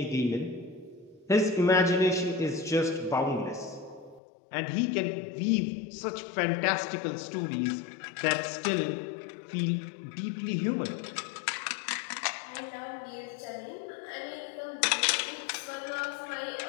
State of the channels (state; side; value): drops out; right; at 4.2 s